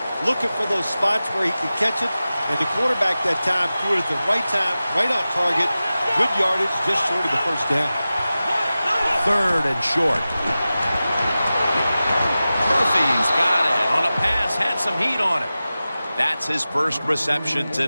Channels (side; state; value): both; inverted; correlation -0.95